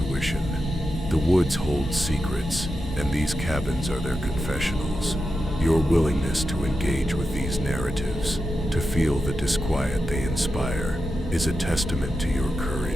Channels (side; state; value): both; normal; correlation 0.88